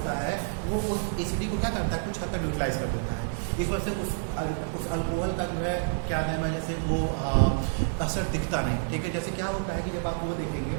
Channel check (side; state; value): left; silent; digital silence